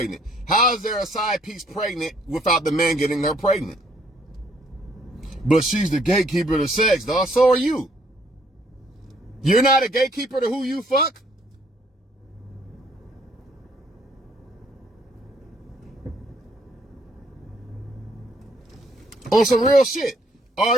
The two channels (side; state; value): both; normal; correlation 0.66